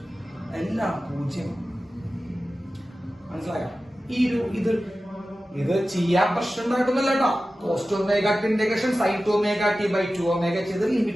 എല്ലാം 0. മനസ്സിലായോ? ഇത് ചെയ്യാൻ പ്രശ്നം ഉണ്ടായിട്ടൊന്നുമല്ല കേട്ടോ. cos 2 ωt integration sin 2 ωt/2ω ചെയ്ത്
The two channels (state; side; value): normal; both; correlation 0.95